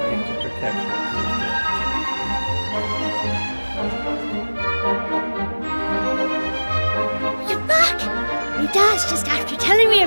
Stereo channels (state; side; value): inverted; both; correlation -1.00